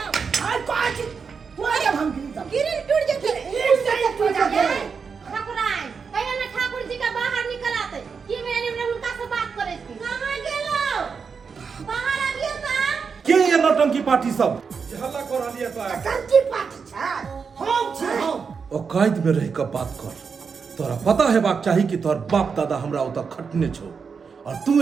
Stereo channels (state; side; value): quieter; left; 5.7 dB